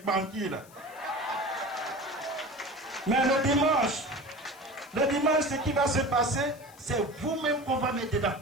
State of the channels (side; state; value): left; noise; hiss, 24 dB below the sound